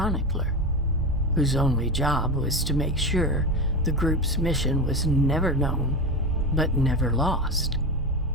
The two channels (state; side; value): normal; both; correlation 0.21